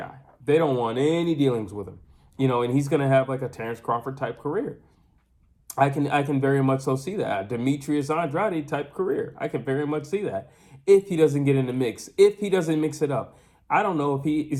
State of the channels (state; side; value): identical; both; correlation 1.00